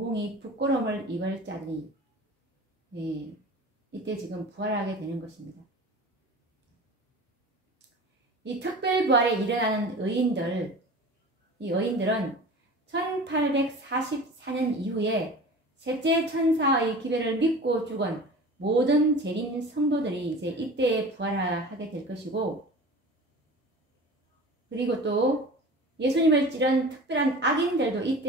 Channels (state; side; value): normal; both; correlation 0.38